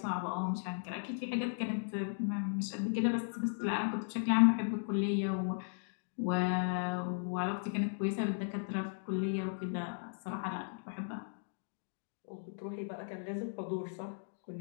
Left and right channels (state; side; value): silent; right; digital silence